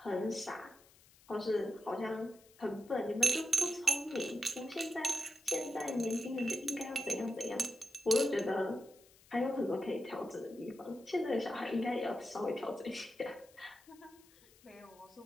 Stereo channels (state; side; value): noise; left; hiss, 26 dB below the sound